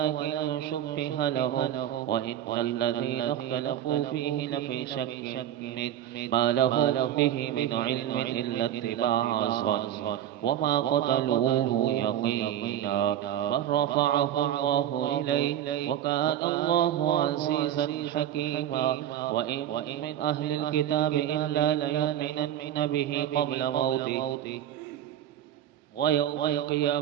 شبه لهم وإن الذين اختلفوا فيه لفي شك ما لهم به من علم إلا اتباع الظن وما قتلوه يقينا بل رفعه الله إليه وكان الله عزيزا حكيما. وإن من أهل الكتاب إلا ليؤمنن به قبل موته ويوم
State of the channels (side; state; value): left; quieter; 11.2 dB